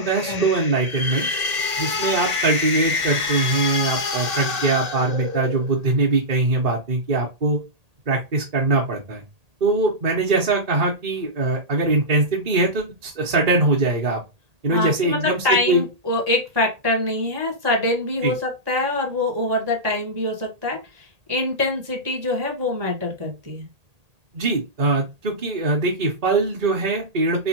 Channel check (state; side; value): late; left; 1.8 ms